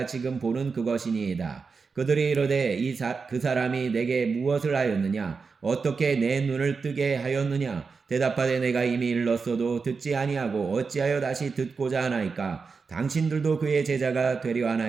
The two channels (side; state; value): left; quieter; 4.9 dB